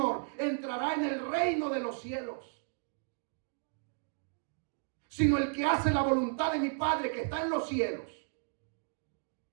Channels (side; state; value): left; silent; digital silence